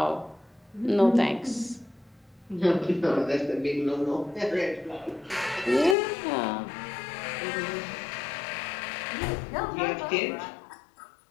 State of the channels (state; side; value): drops out; right; at 6.0 s